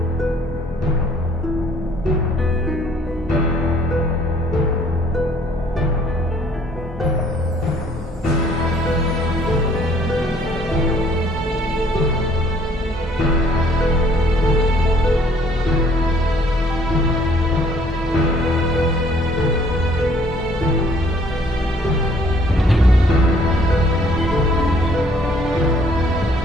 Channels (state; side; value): normal; both; correlation 0.60